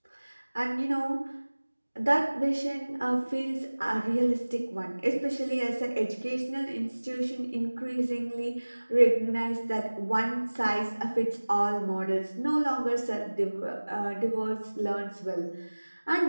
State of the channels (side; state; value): both; inverted; correlation -1.00